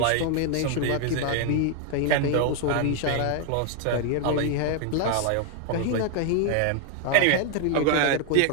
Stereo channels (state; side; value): different; both; correlation 0.00